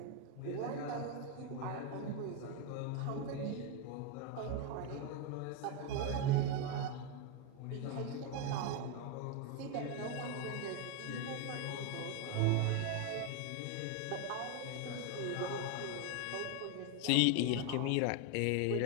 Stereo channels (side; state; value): both; different; correlation 0.01